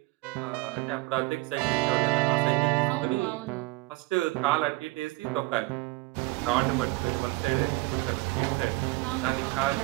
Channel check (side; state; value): left; quieter; 21.4 dB